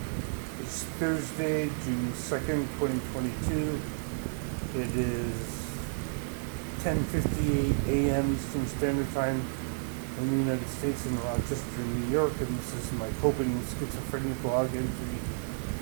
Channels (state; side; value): silent; left; digital silence